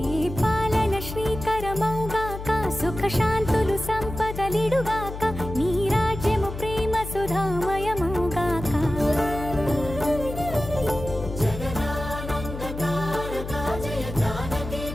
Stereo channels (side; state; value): left; noise; hum, 8 dB below the sound